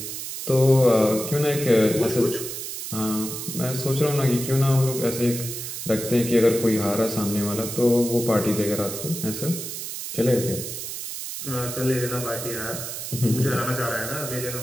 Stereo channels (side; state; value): right; noise; hiss, 7 dB below the sound